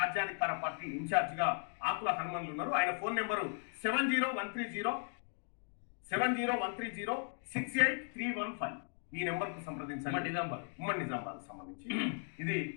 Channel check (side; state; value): right; silent; 53 dB below the other